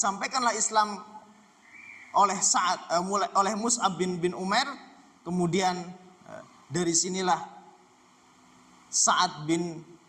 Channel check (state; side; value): identical; both; correlation 1.00